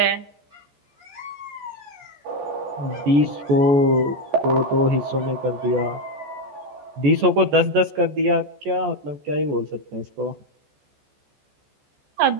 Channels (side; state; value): left; late; 14 ms